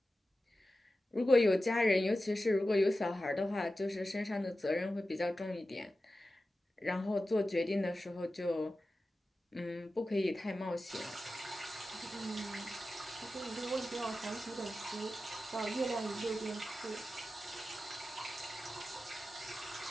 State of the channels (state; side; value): normal; both; correlation 0.93